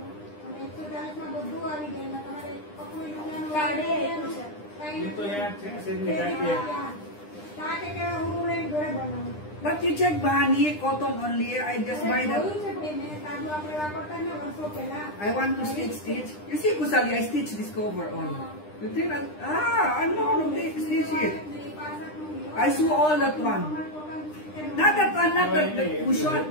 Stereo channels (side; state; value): right; late; 9.9 ms